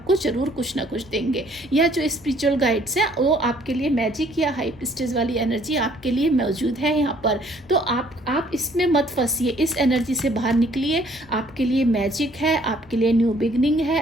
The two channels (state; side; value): normal; both; correlation 0.61